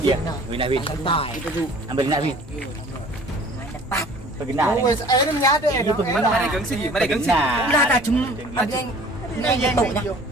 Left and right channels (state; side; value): normal; both; correlation 0.49